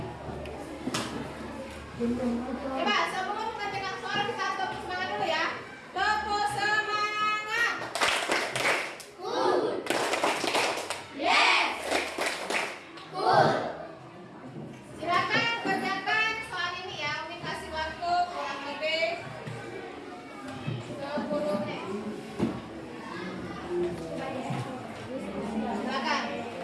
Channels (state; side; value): identical; both; correlation 1.00